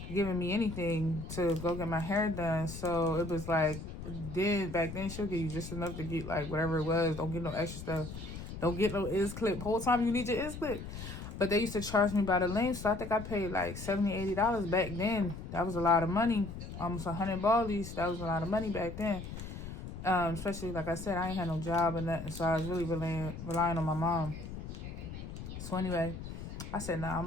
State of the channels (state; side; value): noise; left; rumble, 9 dB below the sound